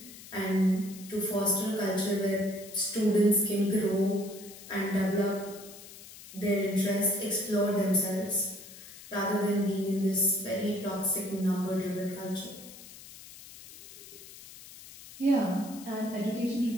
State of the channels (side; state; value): left; noise; hiss, 17 dB below the sound